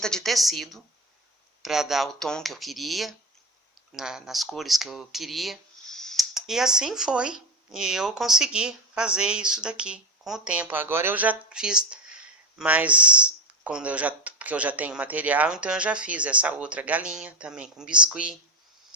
de tecido para dar o tom que eu queria, nas cores que eu queria. E assim foi. E eu consegui fazer isso daqui com o tempo. Agora eu já fiz... Mas porque eu já tenho material, então eu já fiz essa outra galinha também com biscuit.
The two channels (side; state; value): both; normal; correlation 0.20